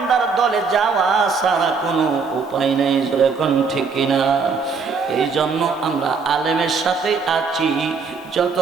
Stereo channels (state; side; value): quieter; left; 5.1 dB